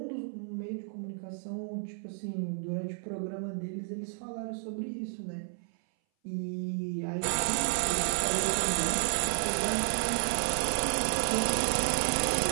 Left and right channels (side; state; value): left; silent; 57 dB below the other